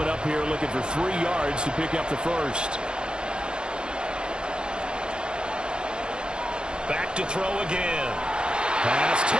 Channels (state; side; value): late; left; 0.050 ms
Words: up here looking for 3 yards to pick up the first. Back to throw again. Pass